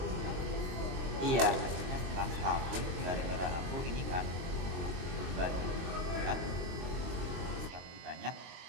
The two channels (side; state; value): left; late; 22 ms